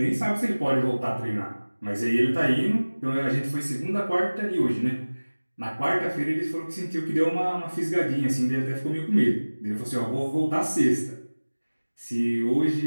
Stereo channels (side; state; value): both; inverted; correlation -1.00